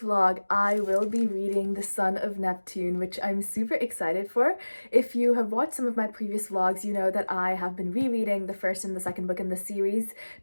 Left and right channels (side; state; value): both; inverted; correlation -1.00